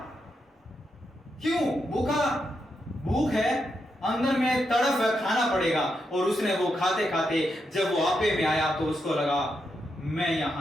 क्यों? भूख है, अंदर में तड़फ है, खाना पड़ेगा। और उसने वो खाते खाते जब वो आपे में आया तो उसको लगा मैं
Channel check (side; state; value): both; normal; correlation 0.83